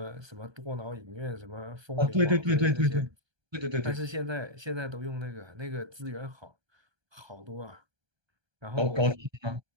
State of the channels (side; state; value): left; late; 1.3 ms